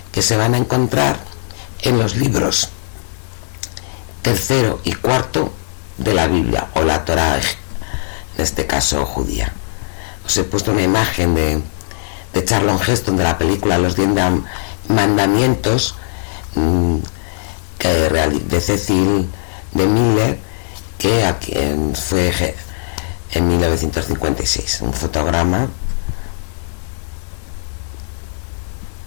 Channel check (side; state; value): right; silent; 67 dB below the other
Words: que se van a encontrar en los libros 3 y 4 de la Biblia, o la Torá, en este caso judía. Os he puesto una imagen de Charlton Heston, de la película Los 10 Mandamientos, de Cecil de Miller, que fue en 1956, un fotograma